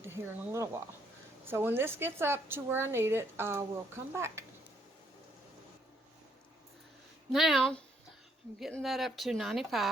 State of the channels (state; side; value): normal; both; correlation 0.69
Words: here in a little while. So when this gets up to where I need it, I will come back. Now, I'm getting that up to